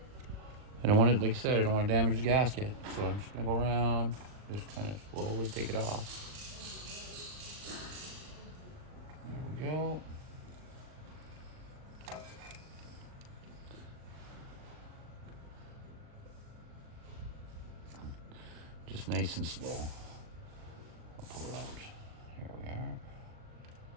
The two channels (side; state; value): left; late; 39 ms